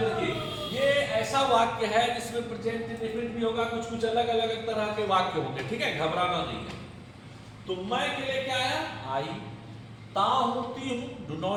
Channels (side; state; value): both; identical; correlation 1.00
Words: ये ऐसा वाक्य है जिसमें प्रेजेंट इंडेफिनिट भी होगा, कुछ कुछ अलग अलग तरह के वाक्य होंगे, ठीक है, घबराना नहीं है। तो मैं के लिए क्या आया, आई। ता होती हूं, डू